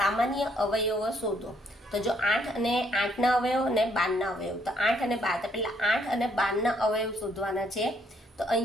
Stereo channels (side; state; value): both; normal; correlation 0.69